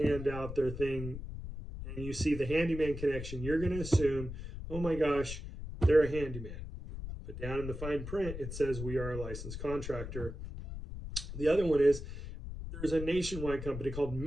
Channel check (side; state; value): left; noise; rumble, 8 dB below the sound